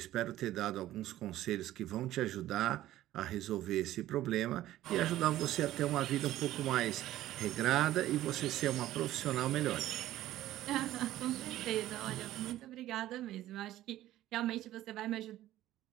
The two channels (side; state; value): left; quieter; 14.3 dB